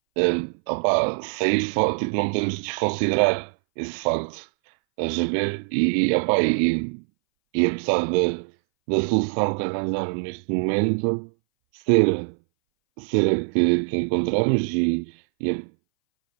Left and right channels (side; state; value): left; silent; 61 dB below the other